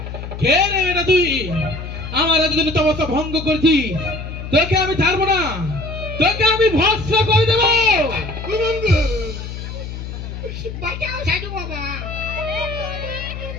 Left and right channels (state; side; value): noise; left; hum, 8 dB below the sound